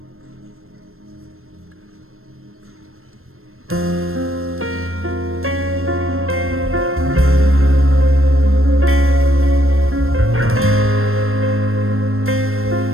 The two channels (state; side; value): late; left; 0.62 ms